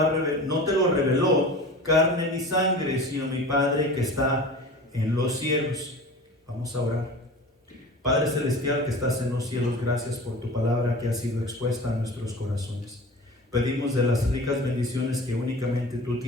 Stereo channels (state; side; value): normal; both; correlation 0.37